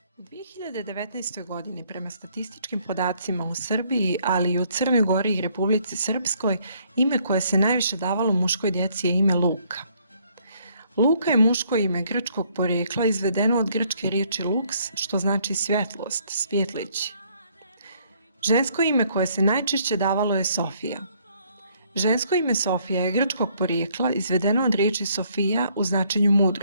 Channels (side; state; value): both; inverted; correlation -0.66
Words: U 2019. godini prema statističkim podacima u Srbiji, ali i u Crnoj Gori i Republici Srpskoj, ime koje se najviše davalo muškoj djeci je ime Luka. Luka je muško ime grčkog porijekla izvedeno od grčke riječi lux, što znači svjetlost, svjetlići. Žensko ime koje se najčešće davalo je Sofija. Žensko ime Sofija je grčkog porijekla izvedeno od riječi Sofija u značenju